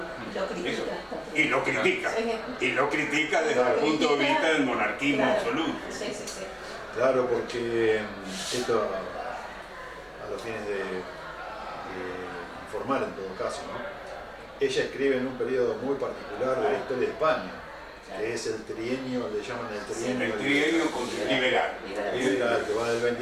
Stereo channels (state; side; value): identical; both; correlation 1.00